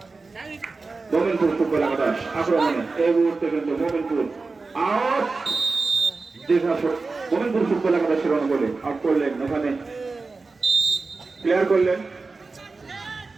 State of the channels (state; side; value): quieter; left; 3.9 dB